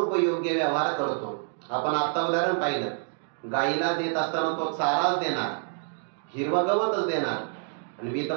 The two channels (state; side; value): silent; left; 60 dB below the other